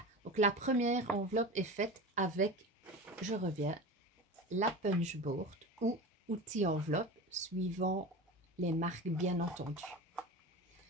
donc la première enveloppe est faite avec, je reviens, la punchboard ou outil enveloppe, suivant les marques bien entendu.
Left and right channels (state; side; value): normal; both; correlation 0.30